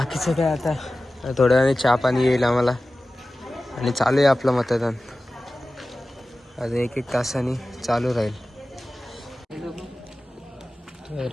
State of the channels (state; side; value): normal; both; correlation 0.96